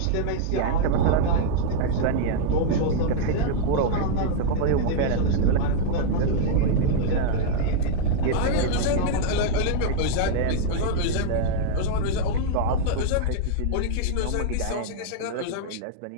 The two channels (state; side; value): different; both; correlation -0.01